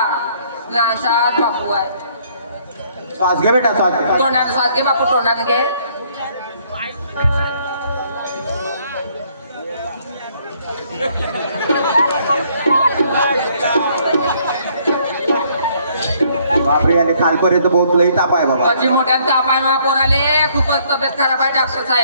लहानसा बापू आहे. श्वास घे बेटा श्वास. तोंडाने स्वाद घे बापू. तोंडाने घे. बापरे याले खालपर्यंत बहुत लई ताप आहे बाबा. माझी मोठ्या ताप आहे मा पोराले. खूपच तब्येत खराब आहे डॉक्टर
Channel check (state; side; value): inverted; both; correlation -0.65